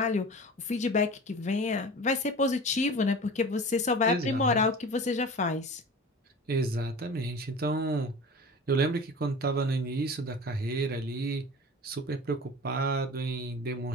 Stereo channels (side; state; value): both; normal; correlation 0.36